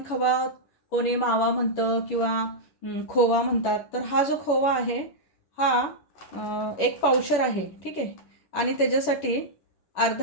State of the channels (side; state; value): right; late; 10 ms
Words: कोणी मावा म्हणतं किंवा खोवा म्हणतात. तर हा जो खोवा आहे हा 1 पावशर आहे. ठीक आहे. आणि त्याच्यासाठी